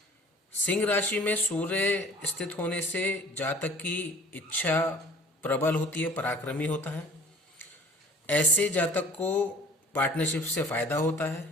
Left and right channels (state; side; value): normal; both; correlation 0.49